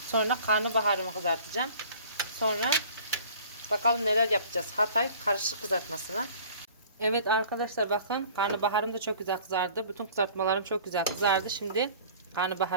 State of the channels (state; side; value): inverted; both; correlation -0.48